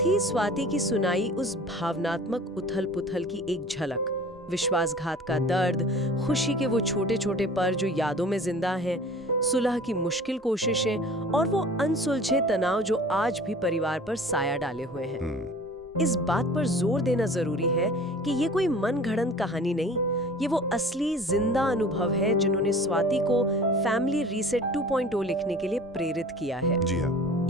स्वाति की सुनाई उस भावनात्मक उथल पुथल की एक झलक। विश्वासघात का दर्द, खुशी के वो छोटे छोटे पल जो यादों में जिंदा हैं, सुलह की मुश्किल कोशिशें और वो अनसुलझे तनाव जो आज भी परिवार पर साया डाले हुए हैं। इस बात पर जोर देना जरूरी है कि ये कोई मनगढ़ंत कहानी नहीं, ये वो असली जिंदा अनुभव है जिन्होंने स्वाति को फैमिली रीसेट 2.0 लिखने के लिए प्रेरित किया है। जी हाँ।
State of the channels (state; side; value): normal; both; correlation 0.44